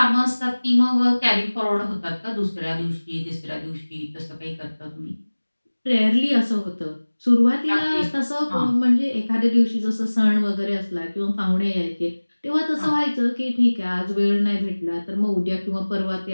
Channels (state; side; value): inverted; both; correlation -1.00